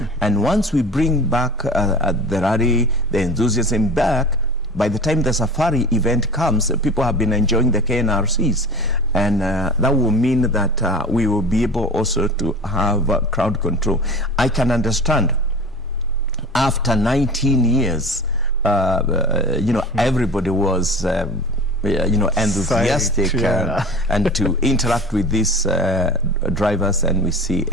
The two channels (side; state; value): both; normal; correlation 0.36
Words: And once we bring back the rally, the enthusiasm back, by the time the Safari event comes, people have been enjoying the KNRCs, and that will mean that we will be able also to have crowd control. I can understand after 19 years, everybody was enthusiastic and to interact with these drivers, and we see